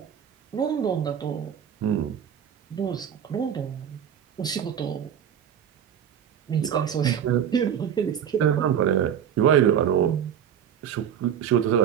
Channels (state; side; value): quieter; left; 9.0 dB